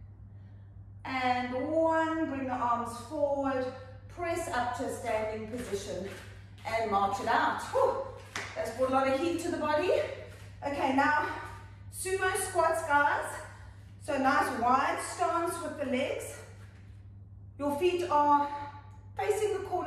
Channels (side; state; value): both; identical; correlation 1.00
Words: And 1. Bring the arms forward. Press up to a standing position. And march it out. Whew. That's brought a lot of heat to the body. Okay, now sumo squats, guys. So nice wide stance with the legs. Your feet are facing the